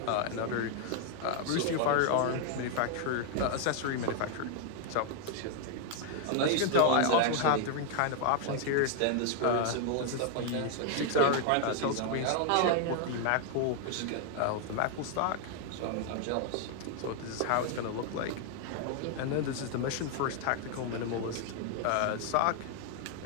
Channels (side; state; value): both; different; correlation 0.00